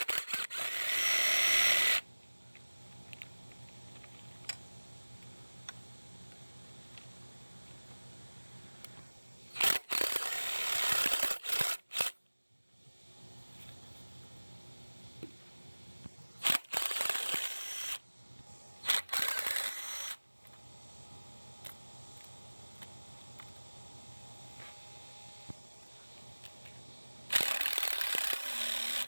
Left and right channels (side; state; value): both; inverted; correlation -1.00